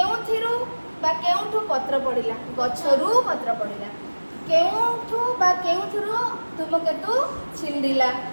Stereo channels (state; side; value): inverted; both; correlation -1.00